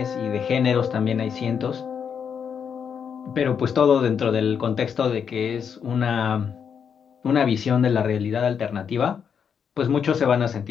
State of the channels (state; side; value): quieter; right; 7.2 dB